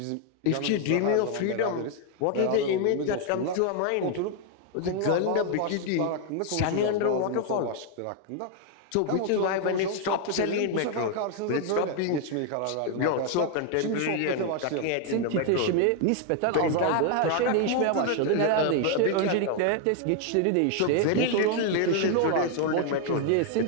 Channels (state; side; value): different; both; correlation 0.00